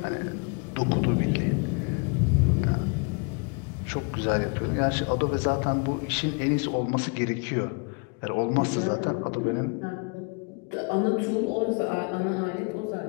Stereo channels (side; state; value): right; quieter; 34.6 dB